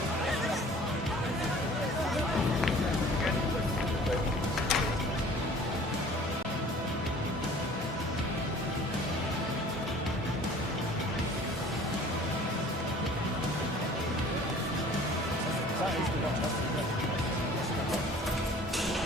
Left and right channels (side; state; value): both; normal; correlation 0.49